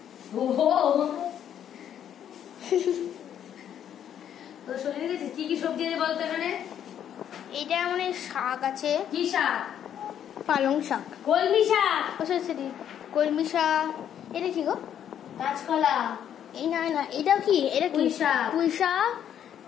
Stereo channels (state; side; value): quieter; right; 9.7 dB